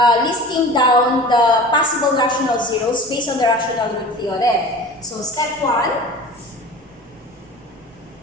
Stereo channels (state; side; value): normal; both; correlation 0.38